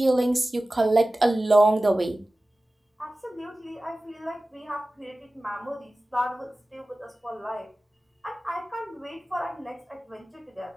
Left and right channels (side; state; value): both; normal; correlation 0.96